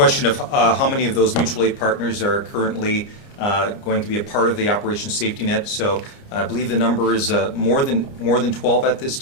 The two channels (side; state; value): right; late; 29 ms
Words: of how many of those mutual aid partners are currently going to be a part of the Operation Safety Net, so I believe the number is more than 12 at this